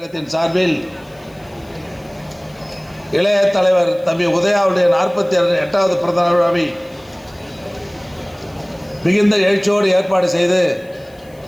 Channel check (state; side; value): noise; left; hiss, 29 dB below the sound